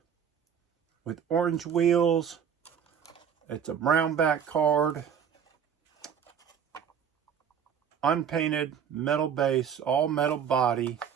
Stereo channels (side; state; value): left; quieter; 7.9 dB